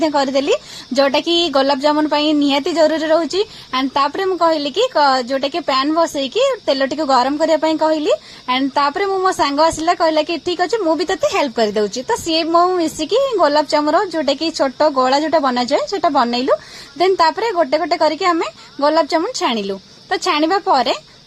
करदेली जोटा कि गोलाप जामुन निहाती जरूरी रोचे एंड तापर मु कहली कि जोटा कि पैन बसईकी तेल टी गरम करने कहली एंड तापर मो सांग आसला कहला कि ठीक अच्छे मुझे तेते हेल्प कर दउची तो सी मो मिसिकी गोलाप जामुन जोटा कि छोट गोला जोटा बना जाए सेटा बनइलु देन तापर गोटे गोटे करके आमे गोलाप जामुन छाणिलु तो छाणिबा परे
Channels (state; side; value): identical; both; correlation 1.00